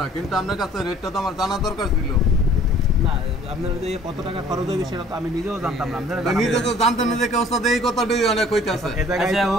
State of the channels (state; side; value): normal; both; correlation 0.54